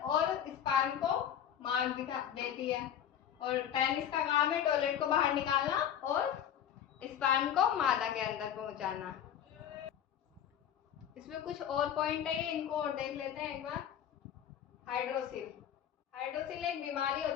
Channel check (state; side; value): quieter; right; 9.6 dB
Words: और स्पर्म को मार्ग दिखा देती है और पेनिस का काम है टॉयलेट को बाहर निकालना और स्पर्म को मादा के अंदर पहुंचाना। इसमें कुछ और पॉइंट है, इनको और देख लेते हैं एक बार। हाइड्रोसिल। हाइड्रोसिल एक बीमारी